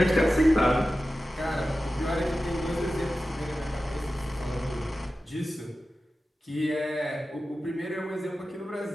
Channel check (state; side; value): normal; both; correlation 0.94